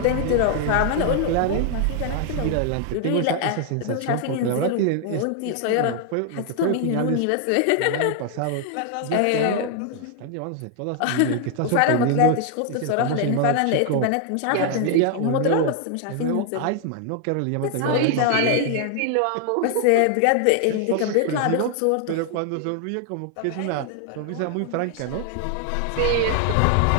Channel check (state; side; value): different; both; correlation 0.00